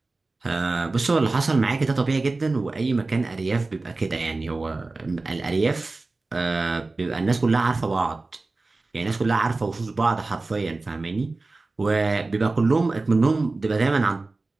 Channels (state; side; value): quieter; left; 3.4 dB